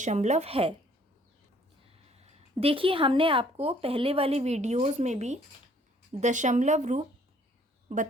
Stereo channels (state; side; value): normal; both; correlation 0.60